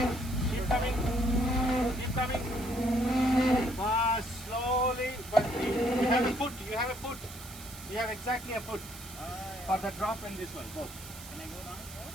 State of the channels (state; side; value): noise; right; hiss, 15 dB below the sound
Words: coming. Keep coming. Fast, slowly, but you have a foot. You have a foot. You have exactly a foot for the drop and this one. Both. Can I go down?